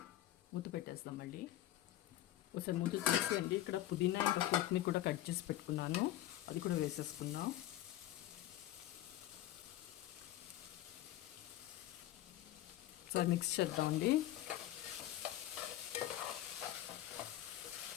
మూత పెట్టేస్తాం మళ్ళీ. ఒకసారి మూత తీసేయండి. ఇక్కడ పుదీనా ఇంకా కొత్తిమీర కూడా కట్ చేసి పెట్టుకున్నాను, అది కూడా వేసేసుకుందాం. ఒకసారి మిక్స్ చేద్దామండి.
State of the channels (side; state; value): right; quieter; 14.0 dB